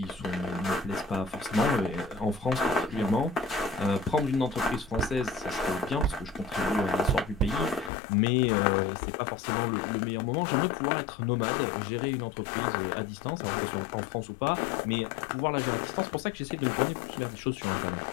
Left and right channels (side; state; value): right; drops out; at 7.9 s